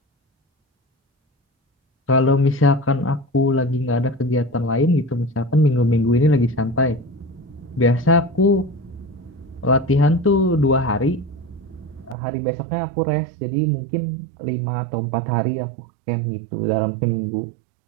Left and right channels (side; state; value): left; drops out; at 12.2 s